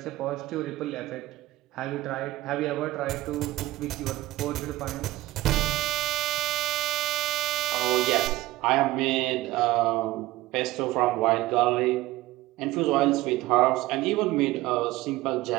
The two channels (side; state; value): left; quieter; 17.5 dB